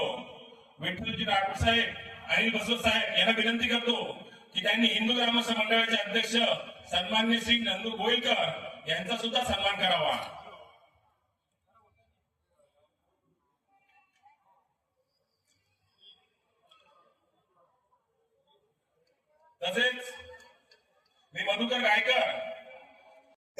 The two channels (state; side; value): identical; both; correlation 1.00